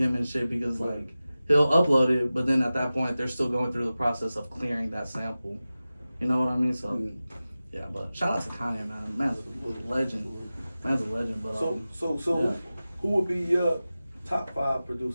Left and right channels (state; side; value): inverted; both; correlation -0.96